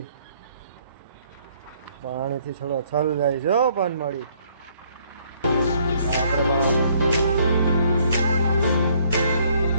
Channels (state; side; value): inverted; both; correlation -0.65